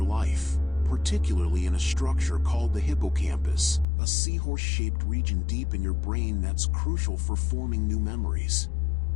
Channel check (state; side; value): drops out; right; at 3.9 s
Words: life, particularly in a structure called the hippocampus, a seahorse-shaped region deep in your brain that's crucial for forming new memories.